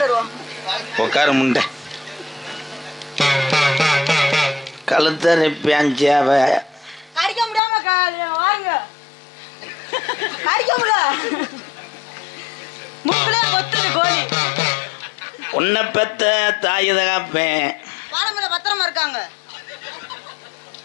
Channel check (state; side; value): drops out; right; at 7.6 s